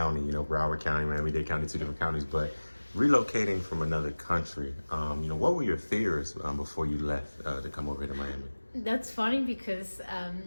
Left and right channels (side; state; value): both; inverted; correlation -1.00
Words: Broward County, Miami-Dade County, two different counties, but relocating from another country, what were your fears before you left to come over here to Miami? That's funny because,